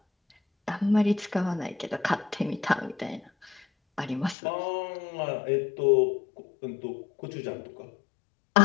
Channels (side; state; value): right; drops out; at 4.4 s